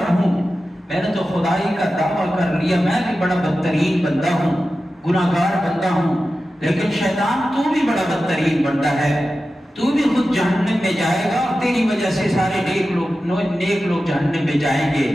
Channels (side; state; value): both; normal; correlation 0.93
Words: ہوں۔ میں نے تو خدائی کا دعویٰ کر لیا، میں بھی بڑا بدترین بندہ ہوں، گناہگار بندہ ہوں، لیکن شیطان تو بھی بڑا بدترین بندہ ہے۔ تو بھی خود جہنم میں جائے گا اور تیری وجہ سے سارے نیک لوگ جہنم میں جائیں گے۔